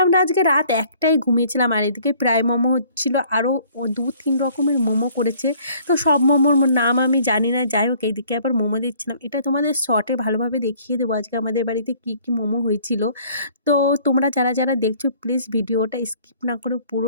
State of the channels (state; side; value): inverted; both; correlation -0.57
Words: আমরা আজকে রাত ১টায় ঘুমিয়েছিলাম। আর এদিকে প্রায় মোমো হচ্ছিল, আরও ২-৩ রকমের মোমো করেছে। তো সব মোমোর নাম আমি জানি না। যাই হোক এইদিকে আবার মোমো দিচ্ছিলাম, এটা তোমাদের শর্টে ভালোভাবে দেখিয়ে দেবো আজকে আমাদের বাড়িতে কী কী মোমো হয়েছিল। তো তোমরা যারা যারা দেখছো প্লিজ ভিডিওটা স্কিপ না করে